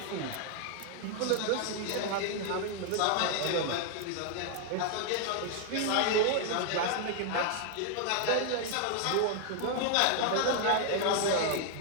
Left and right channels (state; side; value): different; both; correlation 0.00